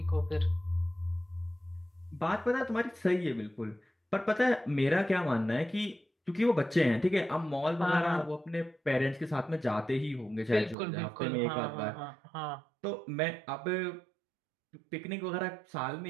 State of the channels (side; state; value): left; drops out; at 10.8 s